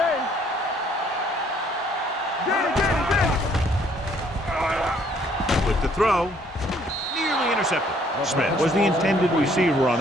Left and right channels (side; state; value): both; normal; correlation 0.63